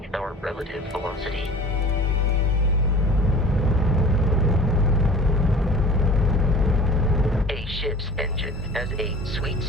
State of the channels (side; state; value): both; normal; correlation 0.43